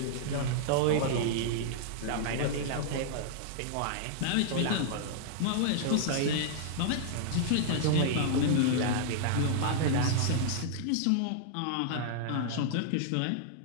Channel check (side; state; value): both; different; correlation -0.01